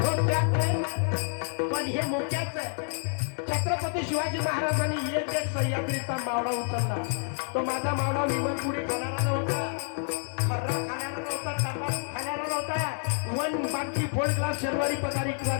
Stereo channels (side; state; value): right; silent; 59 dB below the other